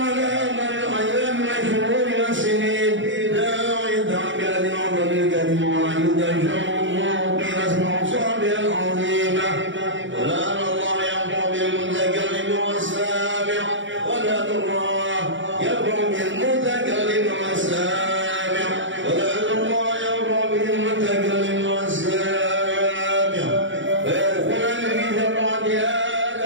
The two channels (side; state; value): left; late; 0.55 ms